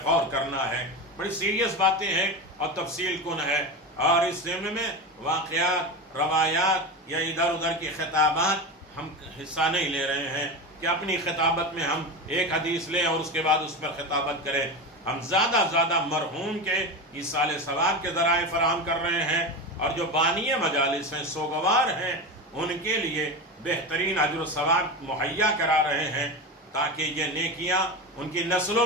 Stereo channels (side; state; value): both; normal; correlation 0.22